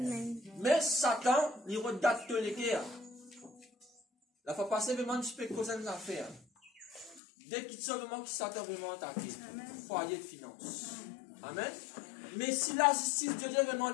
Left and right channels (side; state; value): right; drops out; at 7.2 s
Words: Mais Satan, il redate les guerres. La fois passée, vraiment, tu peux causer une affaire. Dès qu'il sort vraiment qui Satan vraiment attaqué. Foyer de finance. Amen. Mais si la justice de Dieu vraiment